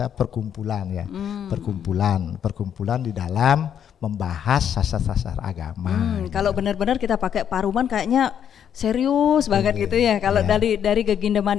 perkumpulan ya. Perkumpulan di dalam membahas sasar-sasar agama. Kalau benar-benar kita pakai paruman kayaknya serius banget gitu ya. Kalau dari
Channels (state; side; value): quieter; right; 8.9 dB